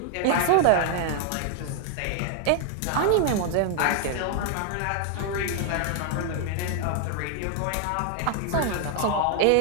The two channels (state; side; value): different; both; correlation 0.00